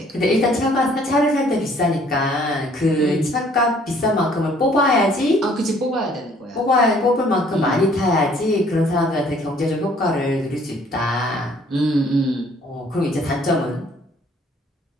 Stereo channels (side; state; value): both; normal; correlation 0.59